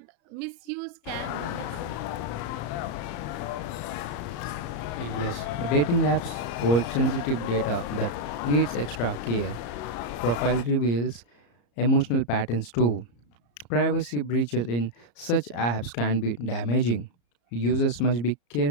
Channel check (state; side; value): late; right; 34 ms